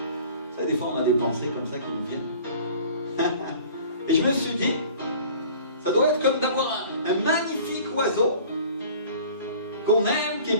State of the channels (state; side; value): inverted; both; correlation -0.47